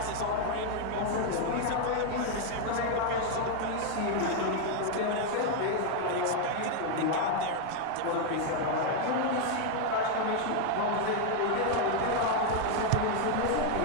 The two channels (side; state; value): both; different; correlation 0.00